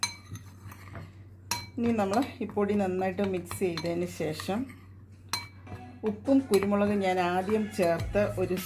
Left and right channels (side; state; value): both; identical; correlation 1.00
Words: ഇനി നമ്മൾ ഈ പൊടി നന്നായിട്ട് മിക്സ് ചെയ്തതിന് ശേഷം ഉപ്പും കുരുമുളകും ഞാൻ ആദ്യം ചേർത്ത് ഒരു